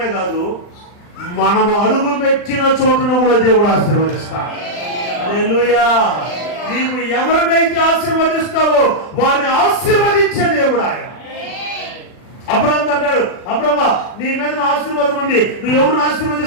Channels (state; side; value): late; right; 39 ms